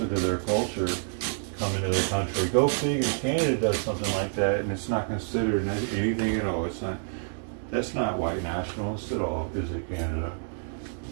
to their culture coming to their country. Go figure, Canada does something like that and it's not considered anything at all. It's not, that's not white nationalist at all, is it, Canada?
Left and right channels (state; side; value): silent; left; digital silence